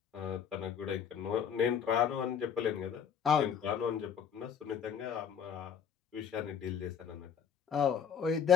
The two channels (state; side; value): quieter; right; 7.8 dB